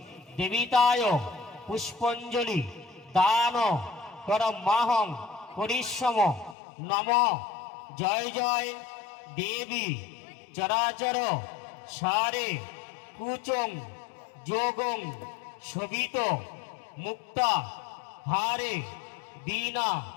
দেবিতায় পুষ্পাঞ্জলি দান করমাহং পরিশ্রম। নম জয় জয় দেবী চরাচর সারে কুচং যোগং শোভিত মুক্তা হারে বীণা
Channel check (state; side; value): drops out; right; at 6.6 s